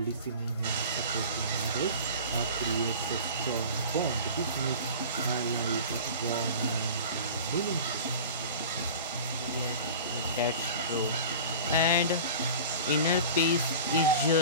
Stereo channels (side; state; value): both; inverted; correlation -0.38